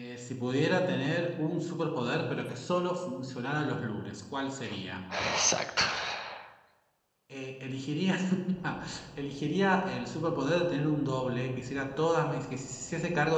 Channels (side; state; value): both; identical; correlation 1.00